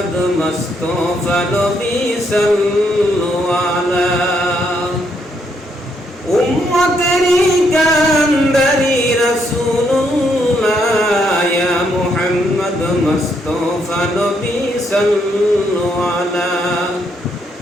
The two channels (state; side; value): normal; both; correlation 0.75